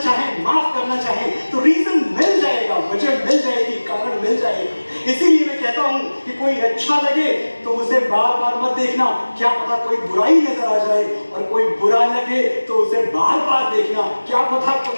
माफ करना चाहें तो रीजन मिल जाएगा, वजह मिल जाएगी, कारण मिल जाएगा। इसीलिए मैं कहता हूं कि कोई अच्छा लगे तो उसे बार बार मत देखना, क्या पता कोई बुराई नजर आ जाए, और कोई बुरा लगे तो उसे बार बार देखना, क्या पता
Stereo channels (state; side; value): inverted; both; correlation -1.00